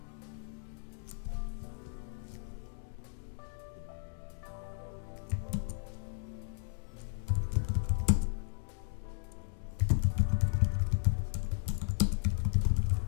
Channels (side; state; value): right; silent; digital silence